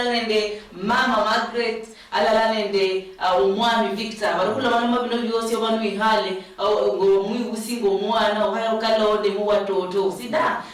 nende mama Margaret alala nende umwami Victor barukula bana bino byose abantu ihale ngo mwibusingo mwana ohayo kalode mu watoto sida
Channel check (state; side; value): identical; both; correlation 1.00